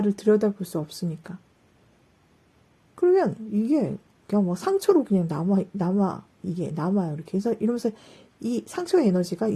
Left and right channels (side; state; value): both; identical; correlation 1.00